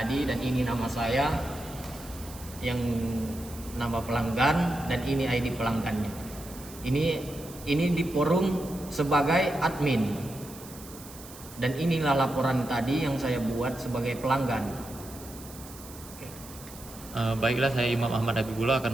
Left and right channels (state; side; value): noise; right; hiss, 17 dB below the sound